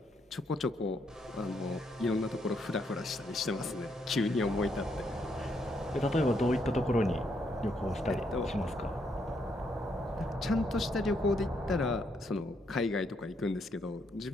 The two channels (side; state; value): both; normal; correlation 0.75